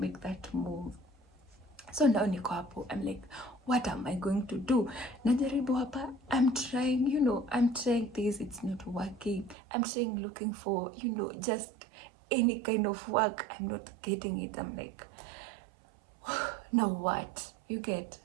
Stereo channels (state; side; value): drops out; left; at 9.6 s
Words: that move. So now niko hapo, I'm like, what am I going to do? Najaribu hapa, I'm trying, I'm trying this, it's not working. I'm trying looking for, just any kind of work. I'm not getting it. I'm like, now what? You get,